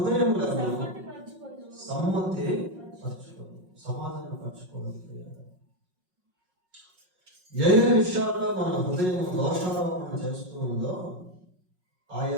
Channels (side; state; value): left; late; 5.5 ms